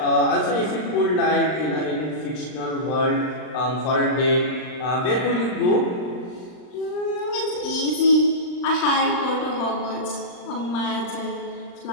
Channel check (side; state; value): right; late; 39 ms